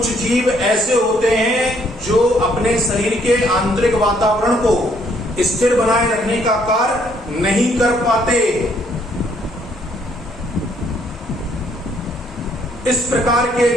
जीव ऐसे होते हैं जो अपने शरीर के आंतरिक वातावरण को स्थिर बनाए रखने का कार्य नहीं कर पाते। इस प्रकार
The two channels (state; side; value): normal; both; correlation 0.67